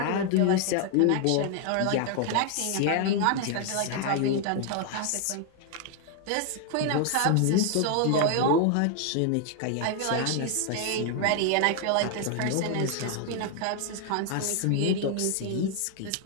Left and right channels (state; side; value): different; both; correlation 0.00